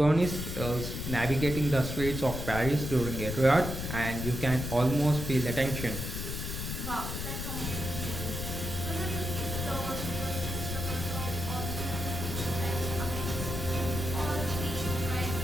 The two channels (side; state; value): left; noise; rumble, 4 dB below the sound